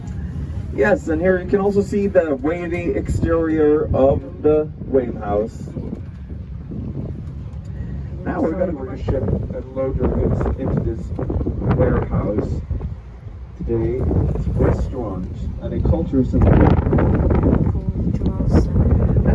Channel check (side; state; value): both; identical; correlation 1.00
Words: Yes, and here you can also see the wavy exterior of the wave house. Now we're going to bring a ship and load our goods into this warehouse. Today it's a restaurant and a culture center.